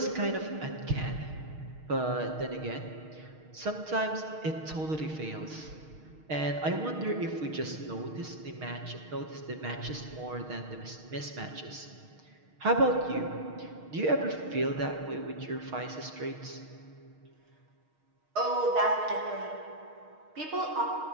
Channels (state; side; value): late; left; 6.5 ms